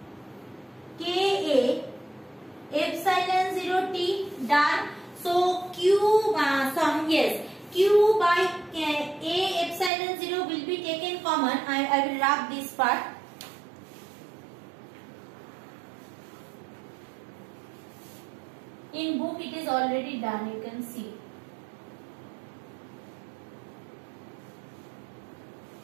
Ka epsilon 0 t. Done. So Q Q by A epsilon 0 will be taken common. I will rub this part. In book it is already done, you can see.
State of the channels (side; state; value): left; drops out; at 9.9 s